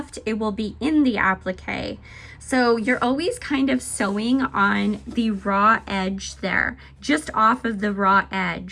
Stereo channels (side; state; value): both; identical; correlation 1.00